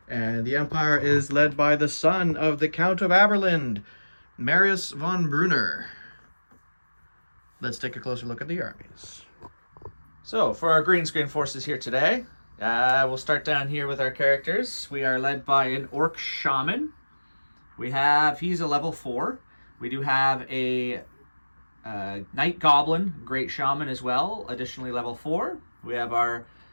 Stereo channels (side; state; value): both; inverted; correlation -1.00